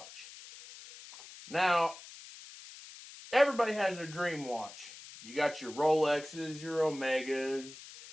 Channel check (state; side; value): noise; left; hiss, 16 dB below the sound